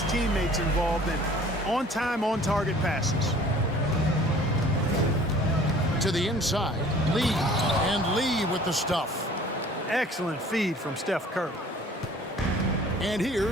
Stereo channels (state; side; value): normal; both; correlation 0.50